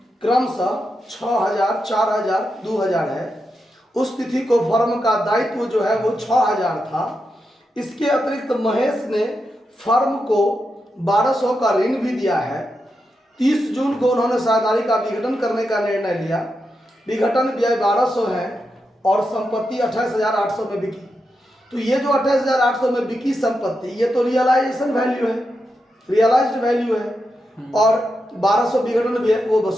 क्रमशः 6000, 4000, 2000 है। उस तिथि को फर्म का दायित्व जो है वो 6000 था। इसके अतिरिक्त महेश ने फर्म को 1200 का ऋण भी दिया है। 30 जून को उन्होंने साझेदारी का विघटन करने का निर्णय लिया। विघटन व्यय 1200 है और संपत्ति 28,800 में बिकी। तो ये जो 28,800 में बिकी संपत्ति, ये तो रियलाइजेशन वैल्यू है, रियलाइज्ड वैल्यू है। और 1200 विघटन व्यय वो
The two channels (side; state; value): both; normal; correlation 0.86